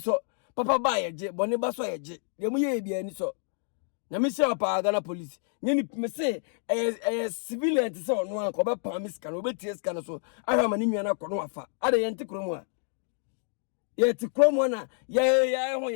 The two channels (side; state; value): right; silent; 57 dB below the other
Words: papa ba ye je bone ba so ye je de mo ye bia ni so nyame hira pa Ghana police nyeni me say civilian ti so no an ko be pam sika no be tie sika no so ahwa ma ni nwana ko no afa ade ye ntikro mu a yet Cromona,